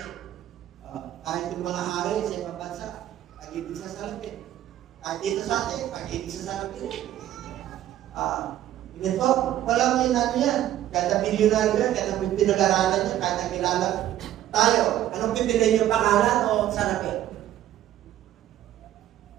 Kahit yung mga hari sa ibang bansa, pag-ibig sa sarapin. Kahit dito sa atin, pag-ibig sa sarapin. Ito, walang ano yan. Kada milyonaryo yan, kada pinag-aralan yan, kada kilala tayo. Anong pipiliin yung pangalan o sarapin?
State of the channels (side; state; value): left; quieter; 12.7 dB